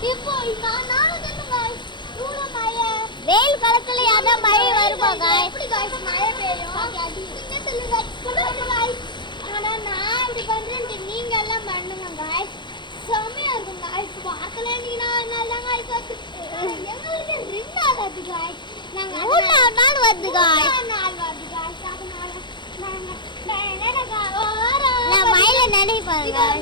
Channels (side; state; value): right; late; 0.22 ms